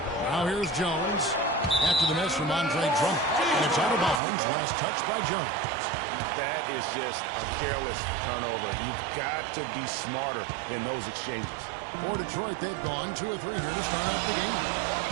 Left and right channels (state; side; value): drops out; left; at 4.2 s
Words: Now here's Jones after the miss from Andre Drummond. And it's out of bounds. Last touch by Jones. That is just a careless turnover. You've got to be smarter in those exchanges. For Detroit, they've gone 2 of 3 here to start off the game.